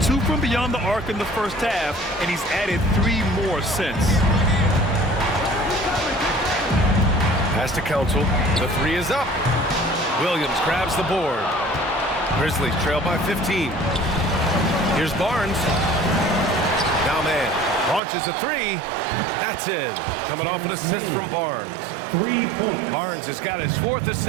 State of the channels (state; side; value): drops out; left; at 18.0 s